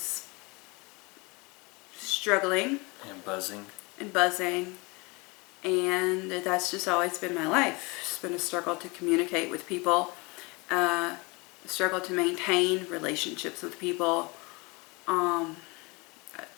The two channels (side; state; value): right; quieter; 26.8 dB